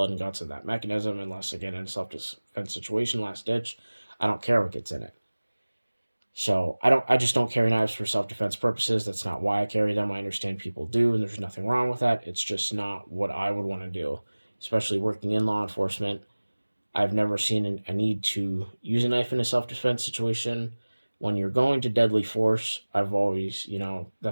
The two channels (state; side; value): inverted; both; correlation -1.00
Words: and guts in that mechanism unless, again, in a self-defense situation, last ditch. I don't care what gets in it. So I just don't carry knives for self-defense purposes. That's not why I carry them. I understand people do, and there's nothing wrong with that. It's just not what I would want to do, especially working in law enforcement. I've never seen a need to use a knife in a self-defense situation. When you're going to deadly force, I've always,